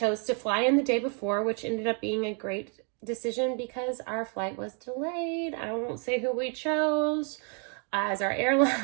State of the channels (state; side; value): quieter; left; 40.0 dB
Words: to fly in the day before, which ended up being a great decision because our flight was delayed. I won't say who we chose as our